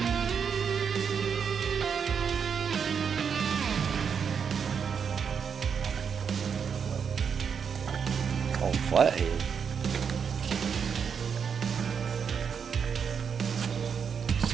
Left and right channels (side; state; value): left; quieter; 6.8 dB